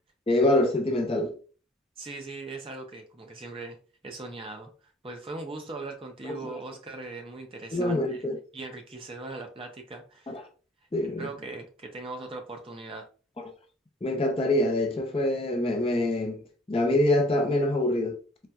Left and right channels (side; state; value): both; normal; correlation 0.54